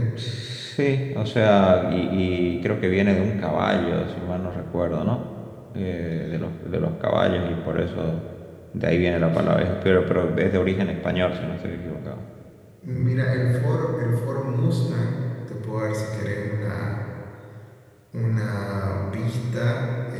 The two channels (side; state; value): both; identical; correlation 1.00